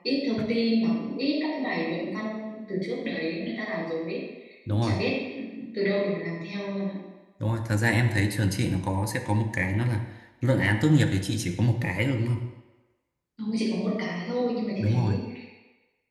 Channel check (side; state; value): both; identical; correlation 1.00